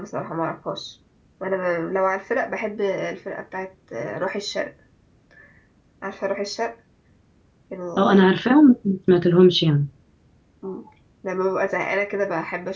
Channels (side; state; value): both; identical; correlation 1.00